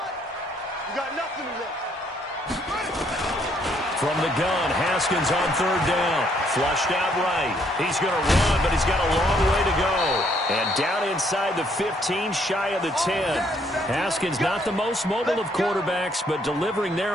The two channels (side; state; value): both; normal; correlation 0.69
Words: got nothing left. From the gun, Haskins on 3rd down. Flushed out right. He's going to run, but he's got a long way to go. And down inside the 15, shy of the 10. Haskins not the most mobile of quarterbacks, but delivering